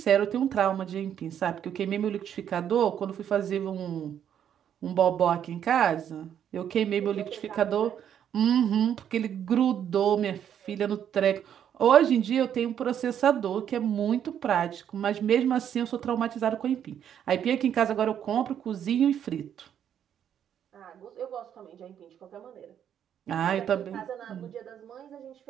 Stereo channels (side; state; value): left; quieter; 9.3 dB